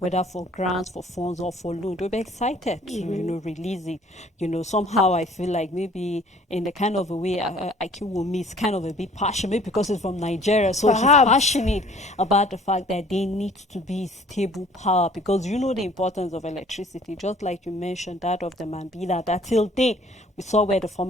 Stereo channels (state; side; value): normal; both; correlation 0.55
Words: for grants, for funds, or for loan, they'll be excited to, release it. Somehow I feel like maybe in the kind of a way IQ will miss kind of a bit passionate, because it's from Nigeria. So Perhaps. he's passionate about the fact that they need to be stable power, because the importance of electricity, just like you mentioned that of the Mambila, that till date we saw where the